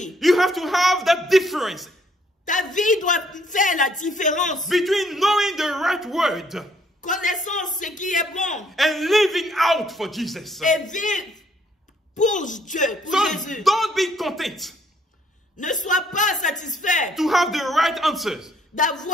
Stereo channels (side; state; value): both; normal; correlation 0.66